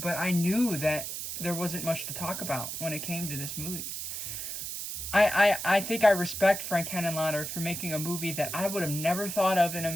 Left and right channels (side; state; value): right; noise; hiss, 6 dB below the sound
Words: I knew that there wasn't much to talk about when it came to this movie. I think I respect Frank Henenlotter for making a movie that I would have never thought of in a